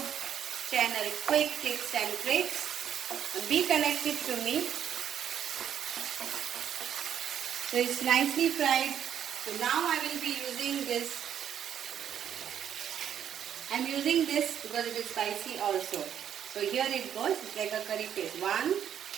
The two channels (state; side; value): quieter; left; 9.4 dB